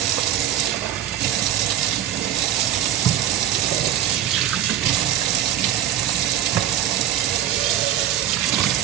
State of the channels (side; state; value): left; quieter; 11.2 dB